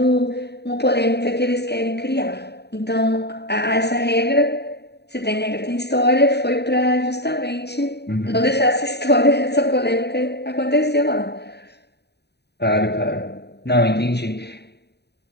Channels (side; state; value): right; late; 0.48 ms